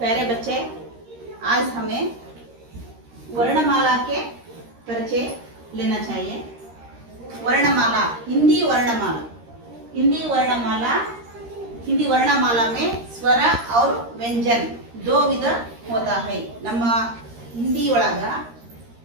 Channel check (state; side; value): late; left; 13 ms